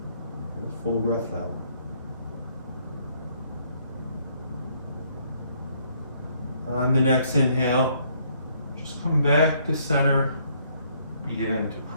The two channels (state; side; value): inverted; both; correlation -0.67